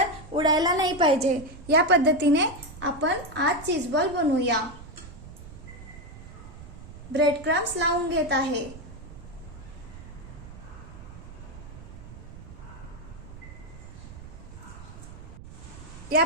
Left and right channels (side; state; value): right; noise; rumble, 15 dB below the sound